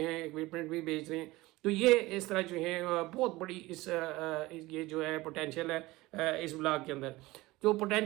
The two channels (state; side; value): quieter; left; 19.9 dB